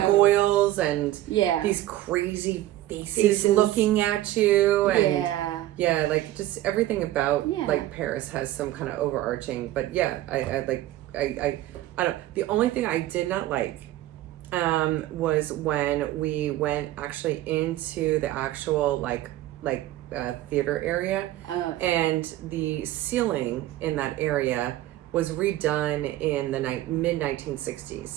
and Yeah. these crazy faces looking at you, and Yeah. like just everything about Yeah. like Paris has some kind of overarching. But yeah, I don't. The only thing I did not like was when we went actually into the actual theater area, and the ceiling in that area was redone in the mid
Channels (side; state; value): left; quieter; 14.9 dB